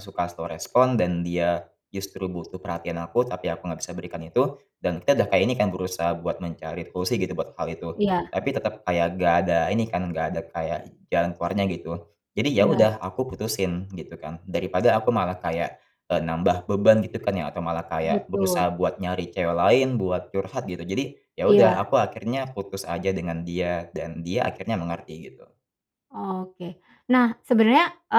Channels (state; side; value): identical; both; correlation 1.00